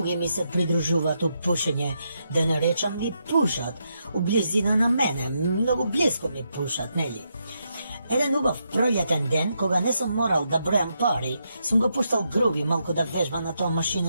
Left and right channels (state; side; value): inverted; both; correlation -0.81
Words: ми се придружуваат у пушење, да не речам ми пушат, у близина на мене, многу близко ми пушат, нели? Еден убав пролетен ден, кога не сум морал да бројам пари, сум го пуштал Груби малку да вежба на тоа